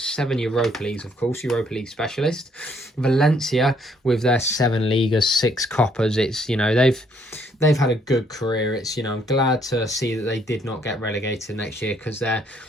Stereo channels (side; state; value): both; normal; correlation 0.68